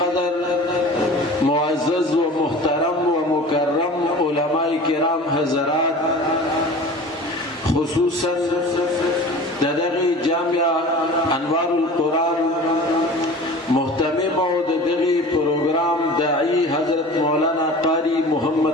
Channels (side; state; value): both; normal; correlation 0.39